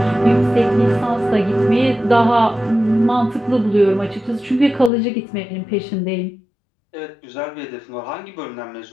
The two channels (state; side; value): drops out; right; at 4.9 s